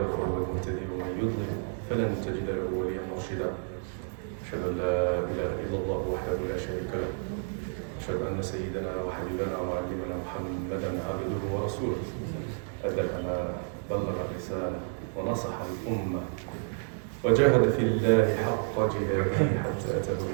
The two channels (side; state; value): left; silent; 58 dB below the other